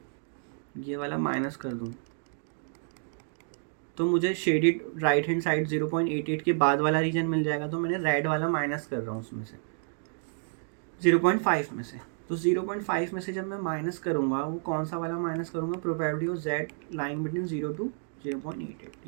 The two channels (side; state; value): left; silent; digital silence